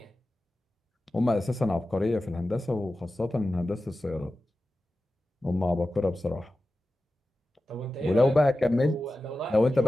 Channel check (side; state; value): both; normal; correlation 0.94